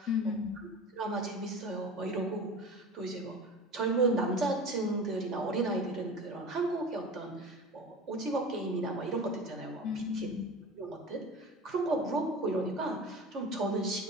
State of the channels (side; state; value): both; normal; correlation 0.34